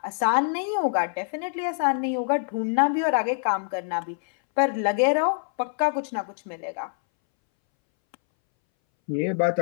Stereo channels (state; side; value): silent; right; 62 dB below the other